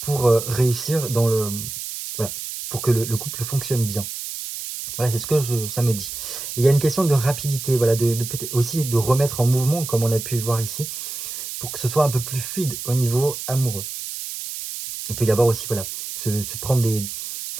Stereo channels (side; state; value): right; noise; hiss, 7 dB below the sound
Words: réussir voilà, pour que le couple fonctionne bien. Voilà, c'est ce que ça me dit. Et il y a une question de rapidité, voilà, peut-être aussi de remettre en mouvement, comme on a pu voir ici, pour que ce soit un peu plus fluide au niveau amoureux. Il peut y avoir aussi, voilà, se prendre